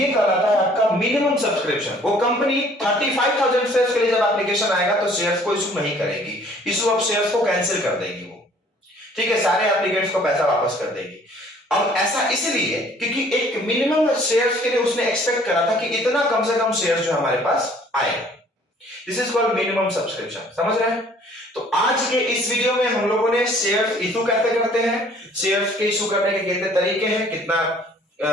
कहलाता है आपका मिनिमम सब्सक्रिप्शन। वो कंपनी 35,000 शेयर्स के लिए जब एप्लीकेशन आएगा तो शेयर्स को इशू नहीं करेगी, इशू ऑफ शेयर्स को कैंसिल कर देगी वो, ठीक है, सारे एप्लीकेंट्स को पैसा वापस कर देगी। अब ऐसा इसलिए क्योंकि एक मिनिमम शेयर्स के लिए उसने एक्सपेक्ट करा था कि इतना कम से कम शेयर्स जो हमारे पास आए। This is called minimum subscription, समझ रहे हैं। तो आज के इस वीडियो में हम लोगों ने शेयर्स इशू कैसे करते हैं, शेयर्स के इशू करने के कितने तरीके हैं, कितना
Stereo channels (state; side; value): normal; both; correlation 0.56